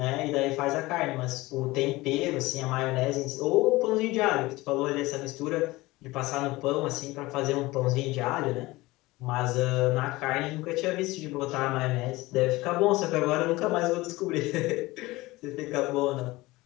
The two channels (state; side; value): quieter; right; 20.2 dB